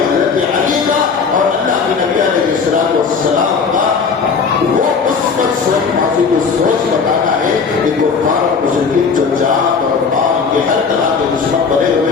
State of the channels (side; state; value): right; quieter; 5.5 dB